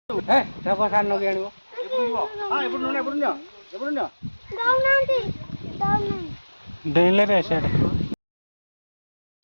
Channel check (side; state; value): both; inverted; correlation -1.00